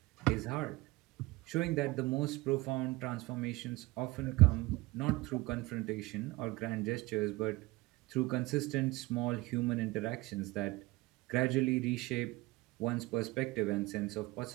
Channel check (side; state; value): left; quieter; 21.3 dB